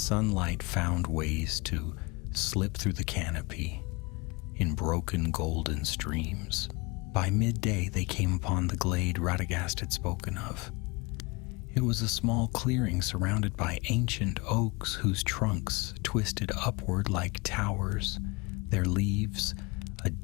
found ways to slip through the canopy in broken golden streams. By midday they came upon the glade Radagast had spoken of. It was a small clearing surrounded by ancient oaks whose trunks twisted upward like towers, their leaves a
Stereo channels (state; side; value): quieter; right; 26.8 dB